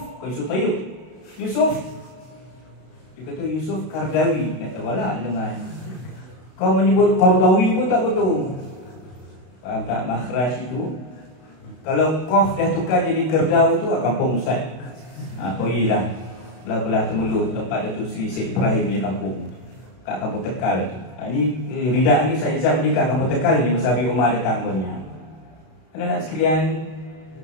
Tayyib. Dia kata Yusuf Qardawi. Tak tahu lah dengar. Kau menyebut Qardawi pun tak betul. Faham tak makhraj itu? Kalau qaf dah tukar jadi Kerdau tu, kampung Ustaz. Pergilah belah-belah Temulut, tempat Datuk Seri Syed Ibrahim punya kampung, kat kampung Tekal tu. Ini Ridak ni Syed Izzat ni kat kampung Tekal ni, masa Abi Umar datang punya. Anak-anak sekalian,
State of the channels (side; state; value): right; late; 32 ms